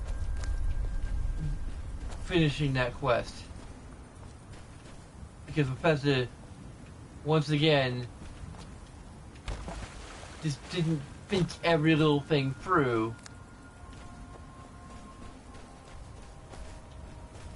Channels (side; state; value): both; identical; correlation 1.00